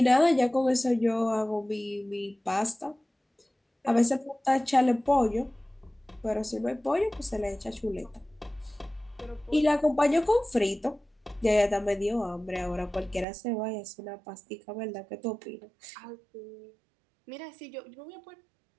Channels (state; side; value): drops out; left; at 13.2 s